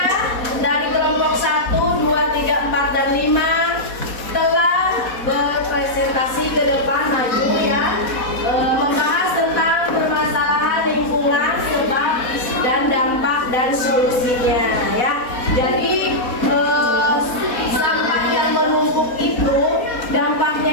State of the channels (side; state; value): right; late; 4.1 ms